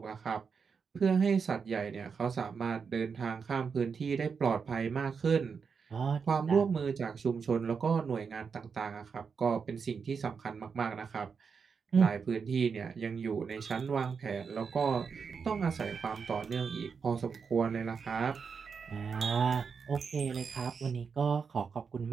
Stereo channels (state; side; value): quieter; left; 5.8 dB